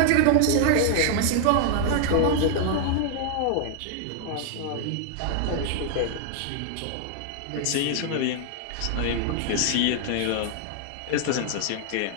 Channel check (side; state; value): both; different; correlation 0.00